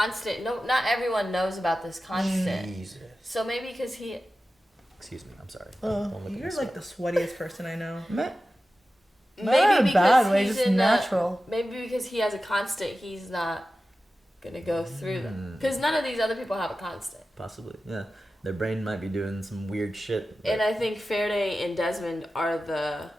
not everyone knows about this constant. Jesus. So maybe because he. Excuse me. I'm sorry. Don't look at You're me so. like the sweatiest person I know. Not in Maybe a because bad way, he's just in natural. maybe because he has a constant, he's not gonna go through them. Mm. Because none of these other people have a constant. Possibly. Yeah. Their brain might be doing some weird shit. And I think Faraday and Desmond are the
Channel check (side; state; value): both; normal; correlation 0.94